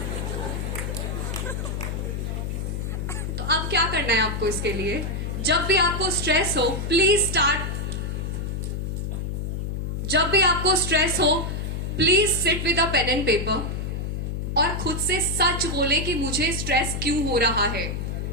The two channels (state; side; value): noise; left; hum, 3 dB below the sound